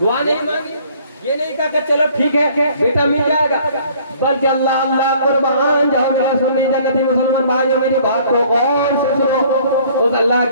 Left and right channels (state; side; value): inverted; both; correlation -0.57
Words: نہیں مانگی، یہ نہیں کہا کہ چلو ٹھیک ہے بیٹا مل جائے گا، بلکہ اللہ اللہ قربان جاؤ میرا سنی جنتی مسلمان بھائیو میری بات کو غور سے سنو. اس اللہ